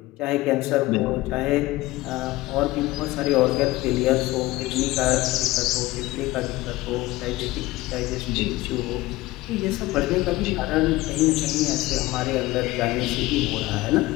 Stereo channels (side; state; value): right; quieter; 18.6 dB